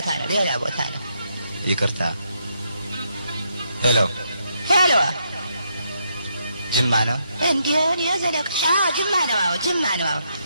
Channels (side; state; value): both; inverted; correlation -0.77